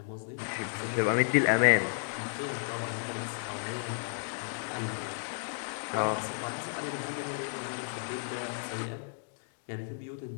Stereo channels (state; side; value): silent; right; digital silence